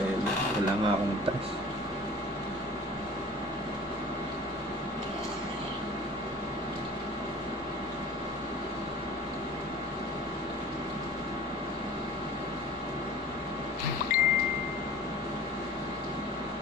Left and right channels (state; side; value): normal; both; correlation 0.44